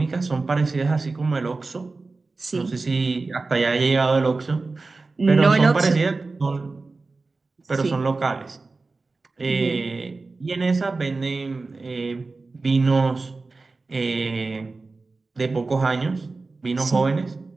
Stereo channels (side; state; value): left; quieter; 3.7 dB